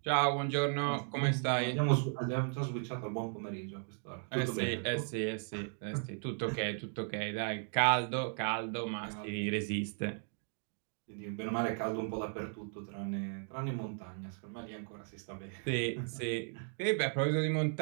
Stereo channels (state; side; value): silent; left; 54 dB below the other